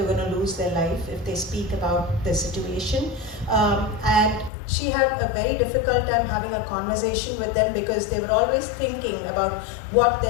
were going to lose their life if they speak about their situation. And she had a very difficult time having a conversation with them, because they were always thinking about what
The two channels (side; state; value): right; drops out; at 4.5 s